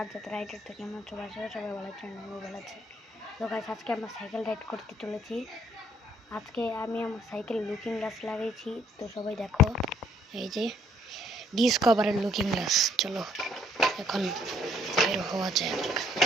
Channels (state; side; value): normal; both; correlation 0.64